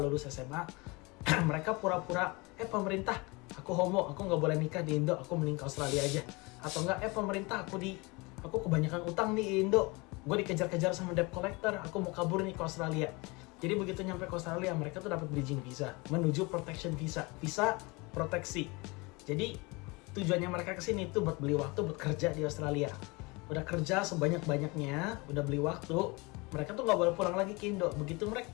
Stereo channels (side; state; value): right; quieter; 26.1 dB